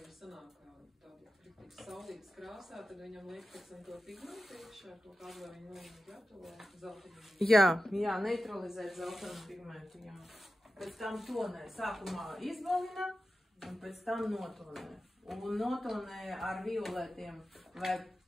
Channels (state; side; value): normal; both; correlation 0.93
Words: Sanāk tādu saulītas krāsā, tad viņam liek pēc tam to pigmentu iekšā, to kādu vai viņu gatavo zeltainu. Jā, neutralizēt zeltainu pigmentu, jā. Pēc tam tonē sākumā izbalina. Un pēc tam notonē. Un notonē ar violetiem vai